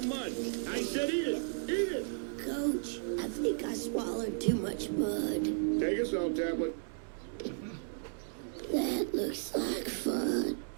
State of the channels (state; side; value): silent; left; digital silence